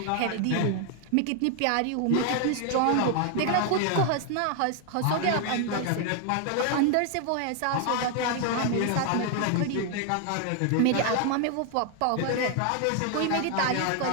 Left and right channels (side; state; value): both; different; correlation 0.00